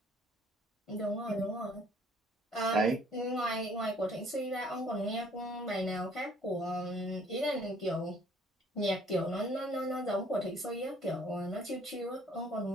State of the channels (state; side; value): normal; both; correlation 0.58